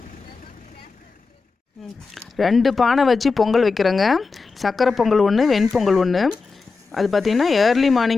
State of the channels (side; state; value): right; quieter; 4.4 dB